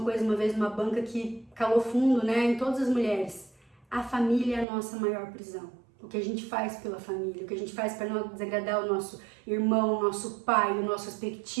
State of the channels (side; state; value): left; drops out; at 4.7 s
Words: coisa uma vez numa banca que calou fundo, né, em todas as mulheres. A família é a nossa maior prisão. O que a gente faz pela família, o que a gente faz para não desagradar o nosso irmão, o nosso pai, o nosso